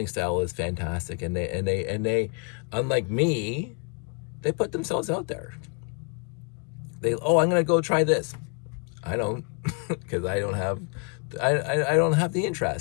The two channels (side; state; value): right; quieter; 35.4 dB